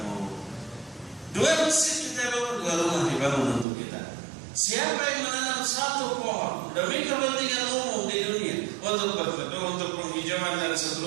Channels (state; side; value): drops out; left; at 3.7 s